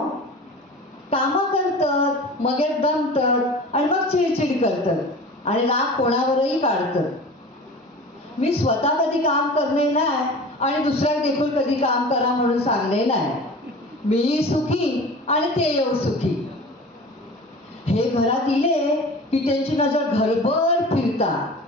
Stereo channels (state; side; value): normal; both; correlation 0.38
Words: कामं करतात, मग दमतात आणि मग चिडचिड करतात आणि राग कोणावरही काढतात. मी स्वतः कधी काम करणे नाही आणि दुसऱ्या देखील कधी काम करा म्हणून सांगणे नाही. मी सुखी आणि ते येऊ सुखी. हे घरात इले की त्यांची नजर घरभर फिरता.